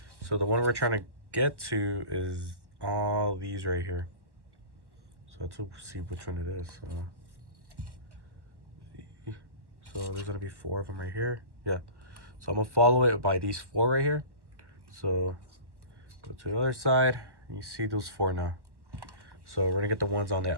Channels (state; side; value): late; left; 1.0 ms